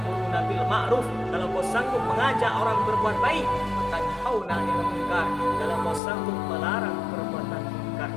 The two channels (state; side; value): drops out; right; at 6.0 s